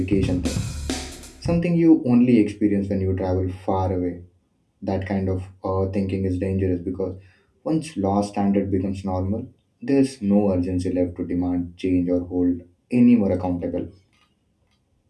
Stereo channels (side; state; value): both; identical; correlation 1.00